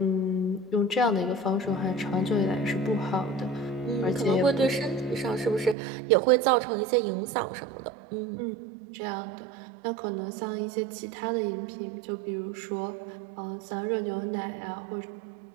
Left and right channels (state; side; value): drops out; left; at 5.8 s